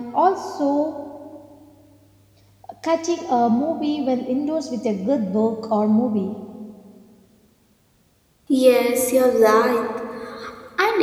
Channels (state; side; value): identical; both; correlation 1.00